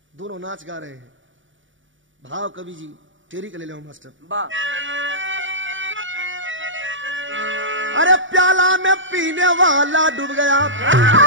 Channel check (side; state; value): left; late; 0.56 ms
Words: दोनों नाच गा रहे हैं। भाव कवि जी टेरी के ले लो मास्टर। अरे प्याला में पीने वाला डूब गया,